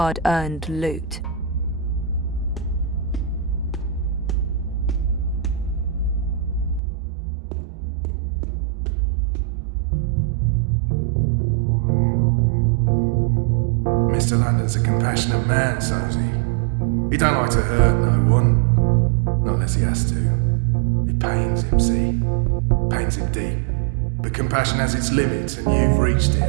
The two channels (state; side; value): drops out; left; at 6.8 s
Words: loot. Mr. London's a compassionate man, Sosie. He don't like to hurt no one. Not unless he has to. It pains him, see? Pains him deep. But compassion has its limits, and you've reached it.